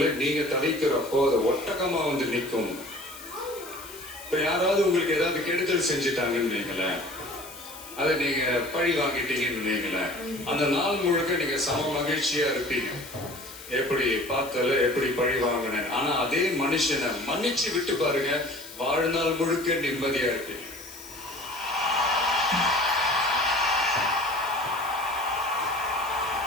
நீங்க தவிக்கிறப்போ அது ஒட்டகமா வந்து நிற்கும். இப்ப யாராவது உங்களுக்கு ஏதாவது கெடுதல் செஞ்சுட்டாங்கன்னு நீங்களேன், அதை நீங்க பழி வாங்கிட்டீங்கன்னு நீங்களேன், அந்த நாள் முழுக்க நீங்க சம மகிழ்ச்சியா இருப்பீங்க. எப்படி பார்த்தால எப்படி பழி வாங்கினேன். ஆனா அதே மனுஷனை மன்னிச்சு விட்டு பாருங்க, வாழ்நாள் முழுக்க நிம்மதியா இருப்பீங்க.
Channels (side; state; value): left; noise; hiss, 15 dB below the sound